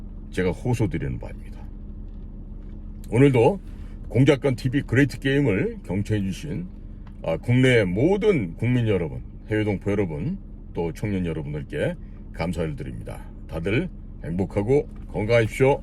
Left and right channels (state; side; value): identical; both; correlation 1.00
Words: 제가 호소드리는 바입니다. 오늘도 공작관TV 그레이트 게임을 경청해 주신 국내의 모든 국민 여러분, 해외 동포 여러분, 또 청년 여러분들께 감사를 드립니다. 다들 행복하고 건강하십시오.